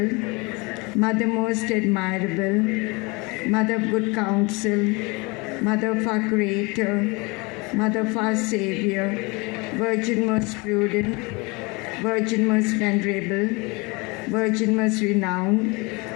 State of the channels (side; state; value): right; quieter; 27.1 dB